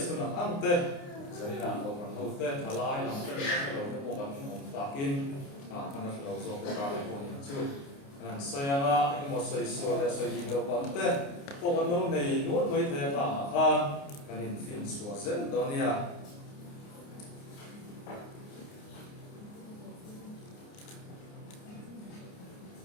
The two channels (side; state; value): right; late; 29 ms